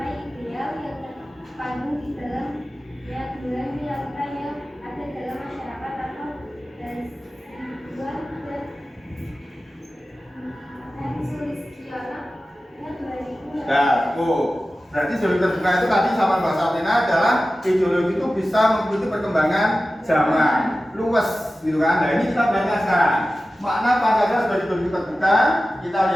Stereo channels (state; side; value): normal; both; correlation 0.95